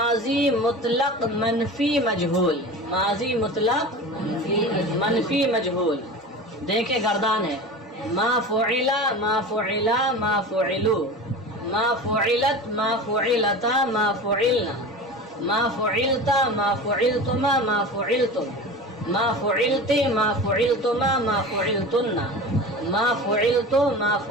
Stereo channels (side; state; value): both; normal; correlation 0.32